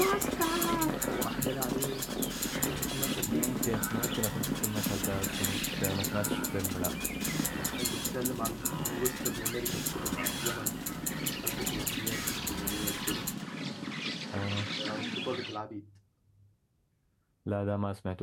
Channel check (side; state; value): both; identical; correlation 1.00